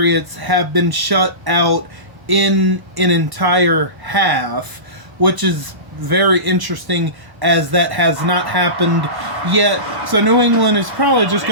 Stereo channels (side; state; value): left; late; 1.1 ms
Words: have been shut out in an entire half, which is very interesting as that has not happened yet. So New England is probably just